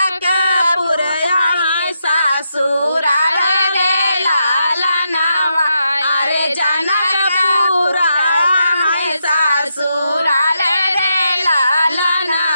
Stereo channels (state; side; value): inverted; both; correlation -0.82